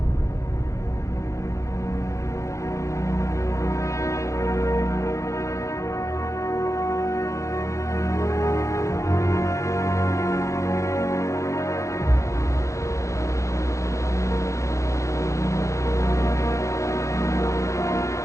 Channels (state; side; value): late; right; 0.15 ms